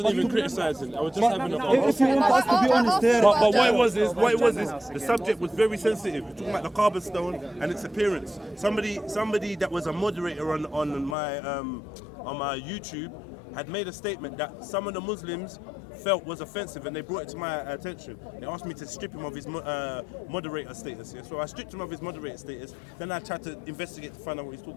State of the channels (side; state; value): right; drops out; at 11.2 s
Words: even criticizing. I was just having a conversation. If you want us to be honest there. But what it was is, the subject was very sensitive. We're talking about the carbon stone and its appearance. Somebody that was a moderator on my YouTube had made a statement that some of the Muslims felt was offensive, and they brought it to my attention. They asked me to strip him of his moderator status. Yeah? So I stripped him of his moderator status. Then I tried to investigate to find out what he's